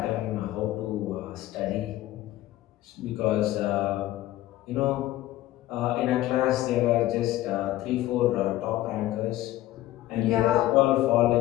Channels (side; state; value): right; quieter; 15.4 dB